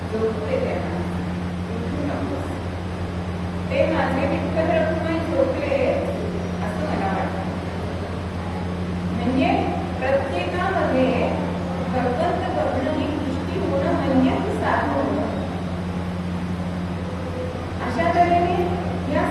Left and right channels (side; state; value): both; identical; correlation 1.00